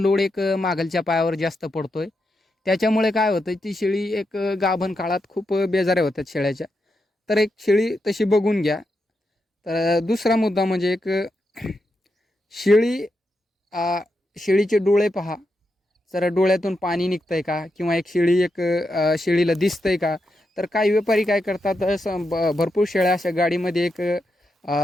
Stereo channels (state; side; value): normal; both; correlation 0.85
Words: लोड एक मागलच्या पायावर जास्त पडतोय. त्याच्यामुळे काय होतं, ती शेळी एक गाभण काळात खूप बेजाऱ्या होतात शेळ्याच्या. तर एक शेळी तशी बघून घ्या. तर दुसरा मुद्दा म्हणजे एक शेळी शेळीचे डोळे पहा. जर डोळ्यातून पाणी निघतंय का, किंवा एक शेळी एक शेळीला दिसतंय का. तर काही व्यापारी काय करतात, भरपूर शेळ्या अशा गाडीमध्ये एक